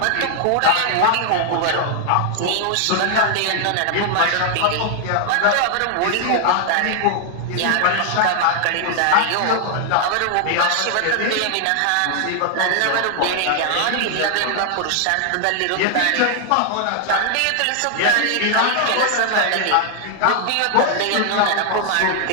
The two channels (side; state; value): both; different; correlation 0.00